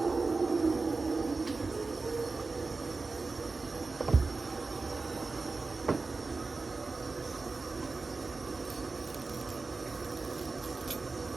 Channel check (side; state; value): left; quieter; 3.9 dB